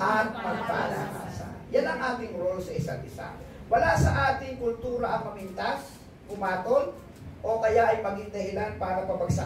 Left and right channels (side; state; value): both; identical; correlation 1.00